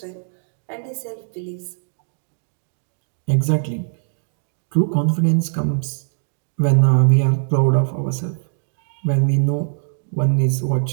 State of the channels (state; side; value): silent; left; digital silence